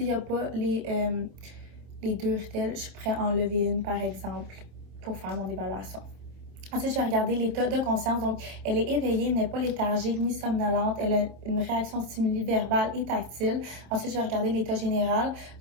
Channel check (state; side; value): late; left; 27 ms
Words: n'y a pas les 2 rutelles, je pourrais enlever une, par exemple, pour faire mon évaluation. Ensuite, je vais regarder l'état de conscience. Donc, elle est éveillée, n'est pas léthargique ni somnolente. Elle a une réaction stimuli verbale et tactile. Ensuite, je vais regarder l'état général.